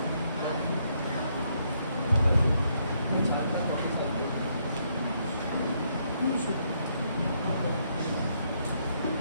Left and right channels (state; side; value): inverted; both; correlation -0.74